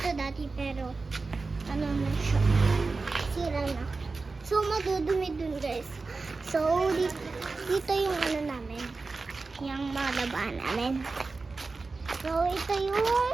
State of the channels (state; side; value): quieter; left; 3.9 dB